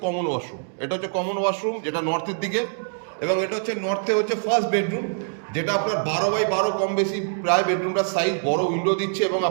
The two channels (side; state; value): left; silent; digital silence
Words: কমন ওয়াশরুম। এটা হচ্ছে কমন ওয়াশরুম, যেটা নর্থের দিকে, এবং এটা হচ্ছে নর্থে হচ্ছে ফার্স্ট বেডরুম, যেটা আপনার 12x12 কম বেশি প্রায় বেডরুমটার সাইজ, বড় উইন্ডো দিচ্ছে এবং